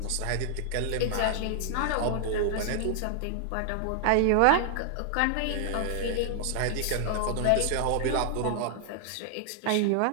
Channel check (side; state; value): both; different; correlation 0.00